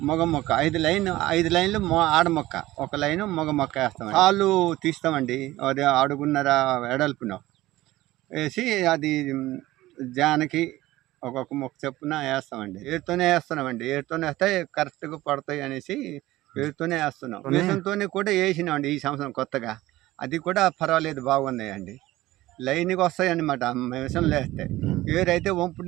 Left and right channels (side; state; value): left; quieter; 17.1 dB